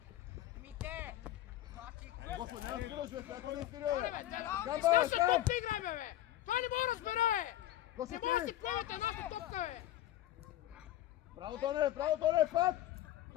Господи, няма свирил, човек, ако не е свирил, бе! Камба, Ще там! топка игра, бе! Той не може да разбере, бе! Господи! Не може да си правите едната топка, бе! Браво, Тоне,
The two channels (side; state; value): right; quieter; 13.5 dB